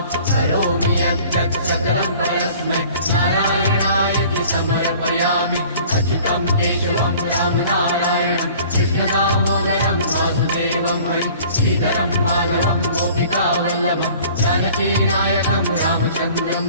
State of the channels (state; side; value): inverted; both; correlation -0.49